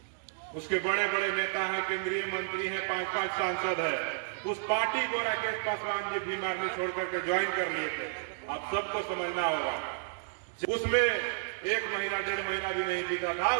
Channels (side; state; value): left; silent; digital silence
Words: उसके बड़े बड़े नेता हैं, केंद्रीय मंत्री हैं, 5-5 सांसद है। उस पार्टी को राकेश पासवान जी भीम आर्मी छोड़ करके ज्वाइन कर लिए थे। आप सबको समझना होगा। उसमें 1 महीना 1.5 महीना भी नहीं बीता था,